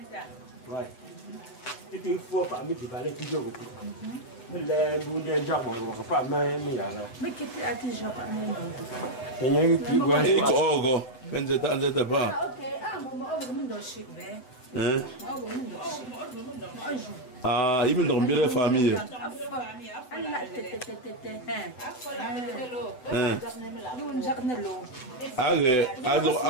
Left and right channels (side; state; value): right; late; 7.9 ms